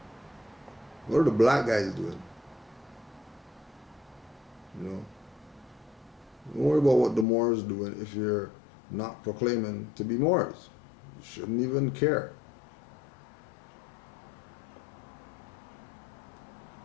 What are the black guys doing? You know? Don't worry about what the Moors doing if you're not proclaiming to be Moors. You shouldn't even care.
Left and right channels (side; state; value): right; drops out; at 7.2 s